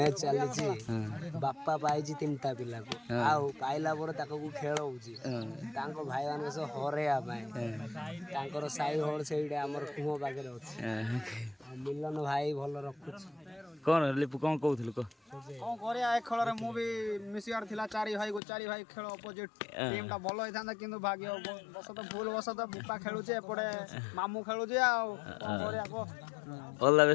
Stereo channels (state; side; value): drops out; right; at 18.4 s